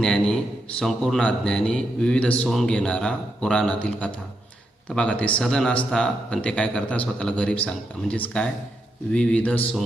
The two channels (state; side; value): normal; both; correlation 0.83